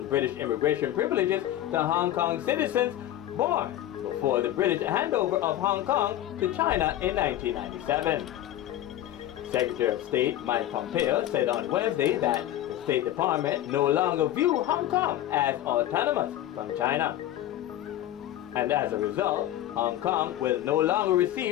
British immigration privileges to Hong Kong citizens born before the British handover of Hong Kong to China in 1997. Secretary of State Mike Pompeo said on Wednesday that the State Department no longer view Hong Kong as autonomous from China. And as a result, Hong Kong will no longer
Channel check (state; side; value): quieter; right; 13.2 dB